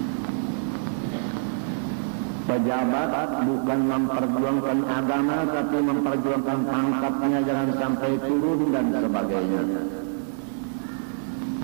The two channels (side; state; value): left; silent; digital silence